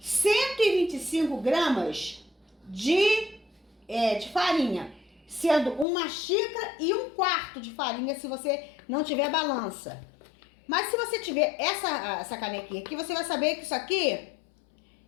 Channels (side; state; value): right; drops out; at 5.9 s